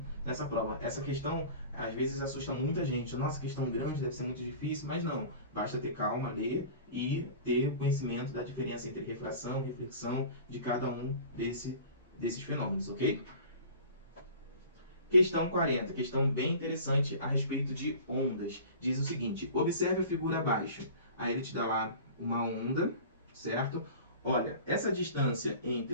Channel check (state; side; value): inverted; both; correlation -0.40